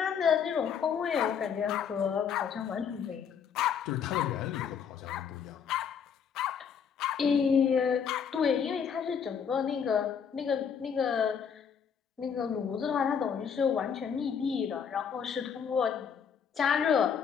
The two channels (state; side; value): quieter; right; 7.2 dB